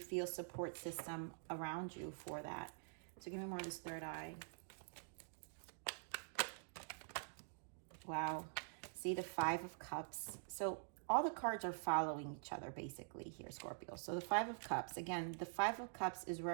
support system around you for that. So give me more of this third eye. Wow. See the Five of Cups. So all the cards are following each other basically here, Scorpio. So the Five of Cups, again, the Five of Cups is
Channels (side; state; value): left; silent; digital silence